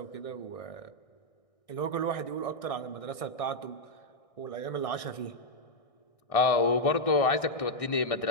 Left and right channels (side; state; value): right; late; 1.6 ms